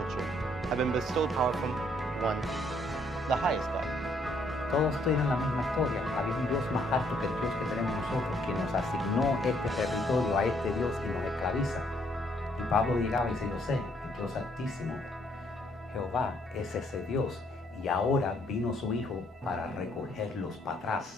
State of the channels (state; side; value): normal; both; correlation 0.68